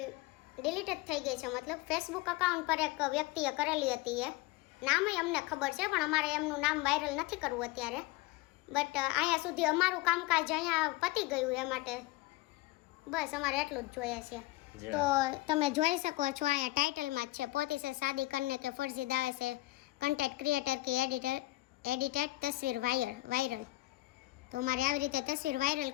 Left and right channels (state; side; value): quieter; right; 19.4 dB